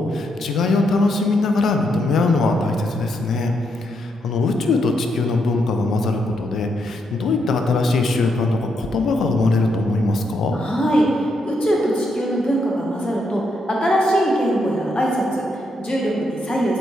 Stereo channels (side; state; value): both; normal; correlation 0.79